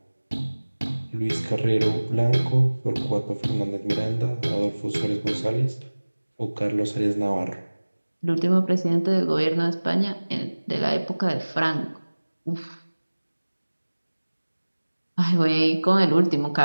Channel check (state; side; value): inverted; both; correlation -1.00